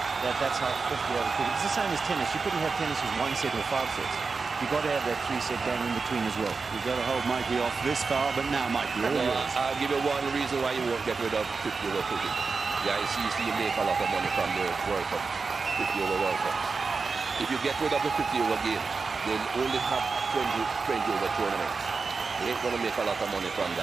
that's how 50-over cricket. It's the same as tennis. You couldn't have tennis with 1 set or 5 sets. You've got to have that 3-set game in between as well. You've got to hold Mikey off this far, but now, Mikey, all yours. I'll give you one reason why you won't get rid of 50-over cricket. Yeah, you make a lot of money from the World Cup, 50-over World Cups. If you get rid of the 50-over game, they'll only have 20-over tournaments. They ain't going to make a lot of money from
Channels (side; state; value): left; quieter; 4.6 dB